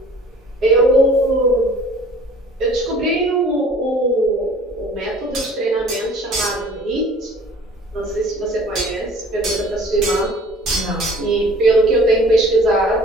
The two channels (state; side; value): normal; both; correlation 0.49